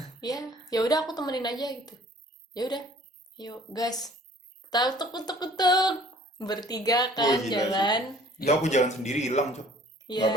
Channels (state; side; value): normal; both; correlation 0.53